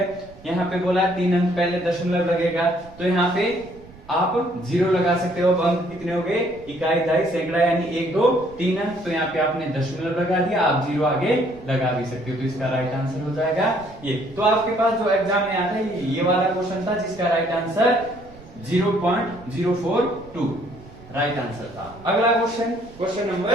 यहाँ पे बोला 3 अंक पहले दशमलव लगेगा, तो यहाँ पे आप 0 लगा सकते हो। अब अंक कितने हो गए, इकाई 2.5 सैकड़ा, यानी 1 2 3 अंक, तो यहाँ पे आपने दशमलव लगा दिया, आप 0 आगे लगा भी सकते हो, तो इसका राइट आंसर हो जाएगा ये। तो आपके पास जो एग्जाम में आता है ये वाला क्वेश्चन था जिसका राइट आंसर 0.042 राइट आंसर था। अगला क्वेश्चन, क्वेश्चन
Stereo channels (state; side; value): noise; right; rumble, 21 dB below the sound